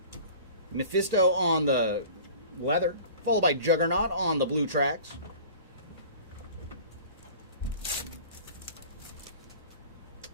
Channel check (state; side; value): inverted; both; correlation -0.43